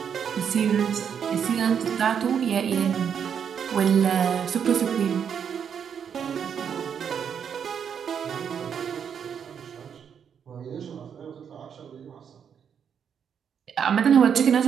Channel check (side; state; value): left; quieter; 7.7 dB